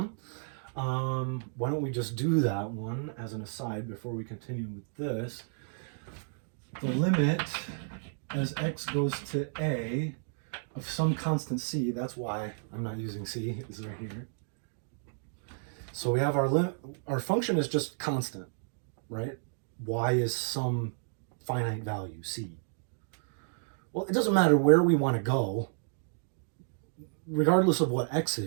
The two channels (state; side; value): silent; left; digital silence